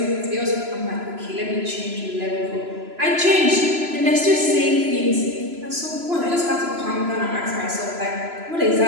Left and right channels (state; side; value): late; left; 3.0 ms